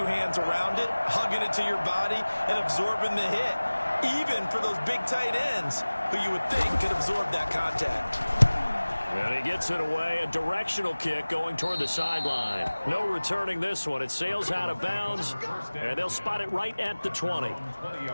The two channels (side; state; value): both; inverted; correlation -1.00